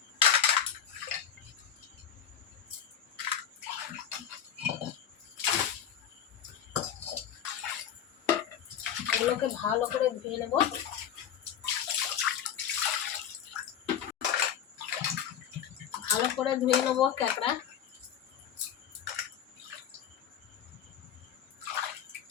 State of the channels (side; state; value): right; quieter; 9.1 dB